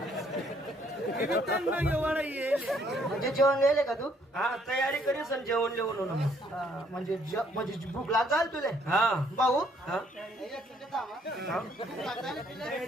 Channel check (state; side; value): normal; both; correlation 0.66